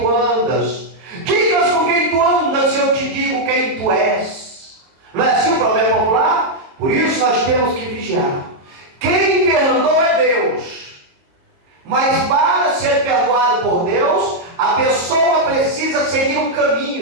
andas. Digas com quem tu andas e eu te digo quem tu és. Não é assim o provérbio popular? Por isso nós temos que vigiar. Quem perdoa é Deus. Mas para ser perdoado por Deus, a pessoa precisa seguir um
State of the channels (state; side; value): late; left; 22 ms